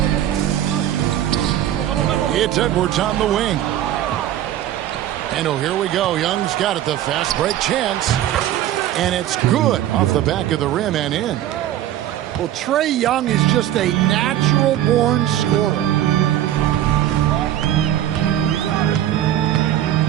It's Edwards on the wing. And oh, here we go. Young's got it, the fast break chance. And it's good off the back of the rim and in. Well, Trae Young is just a natural-born scorer.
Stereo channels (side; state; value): left; quieter; 12.1 dB